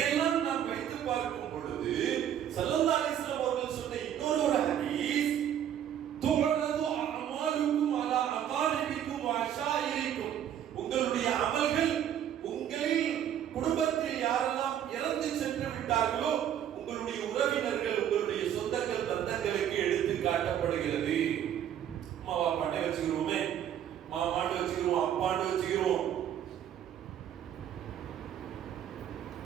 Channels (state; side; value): quieter; left; 10.1 dB